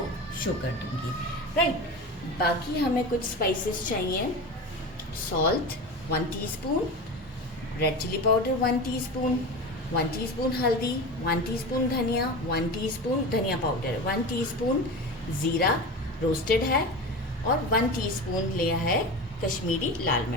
शो कर दूँगी, राइट। बाकी हमें कुछ स्पाइसेस चाहिए। Salt 1 teaspoon, red chilli powder 1 teaspoon, 1 teaspoon हल्दी, 1 टीस्पून धनिया, 1 टीस्पून धनिया पाउडर, 1 टीस्पून ज़ीरा रोस्टेड है और 1 टीस्पून लिया है कश्मीरी लाल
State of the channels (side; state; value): both; normal; correlation 0.28